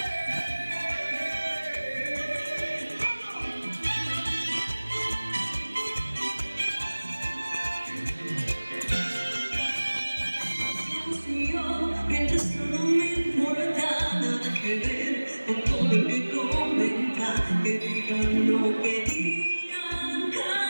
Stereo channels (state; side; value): inverted; both; correlation -1.00